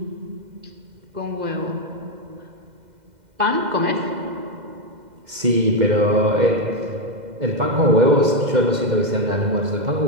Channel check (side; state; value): left; late; 2.0 ms